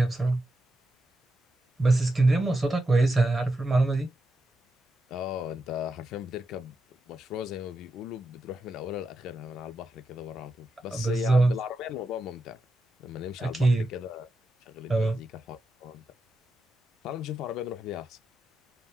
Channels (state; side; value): normal; both; correlation 0.87